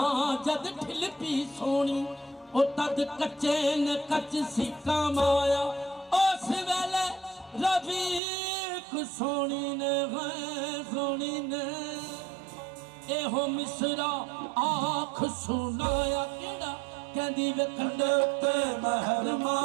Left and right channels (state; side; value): drops out; left; at 8.2 s